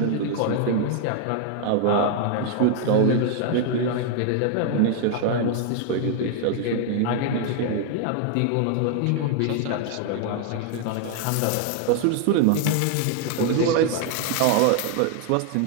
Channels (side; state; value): both; different; correlation 0.00